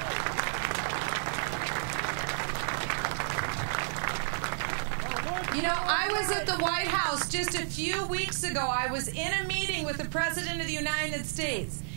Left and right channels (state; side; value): silent; left; 57 dB below the other